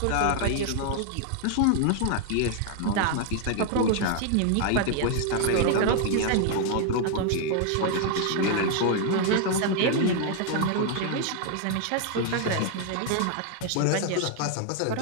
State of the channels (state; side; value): different; both; correlation 0.00